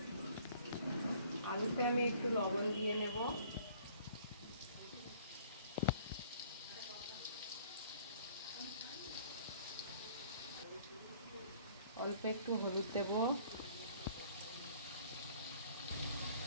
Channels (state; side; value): inverted; both; correlation -0.55